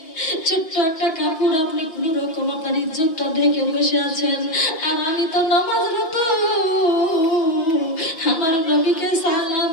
ছোট্ট একটা কাপড়, আপনি কোন রকম আপনার ইজ্জতটা ঢেকে বসে আছেন, আর আমি তো নামাজরত। আমার নবীকে সালাম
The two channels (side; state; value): right; late; 5.7 ms